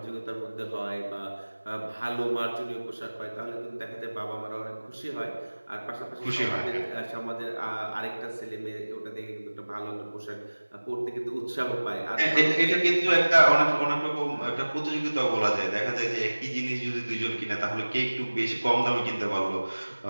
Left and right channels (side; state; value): both; inverted; correlation -1.00